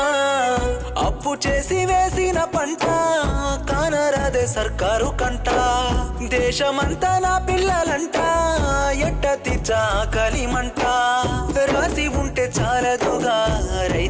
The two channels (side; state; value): both; identical; correlation 1.00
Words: అప్పు చేసి వేసిన పంట కానరాదే సర్కారు కంట దేశమంతా నా పిల్లలంట ఎట్ట తీర్చా కలిమంట రాసి ఉంటే చాలదుగా